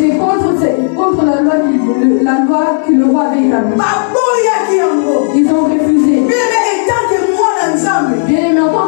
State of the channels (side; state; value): right; silent; digital silence